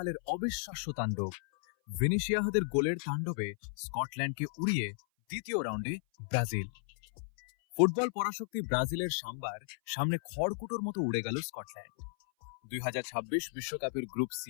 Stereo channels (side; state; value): right; silent; 55 dB below the other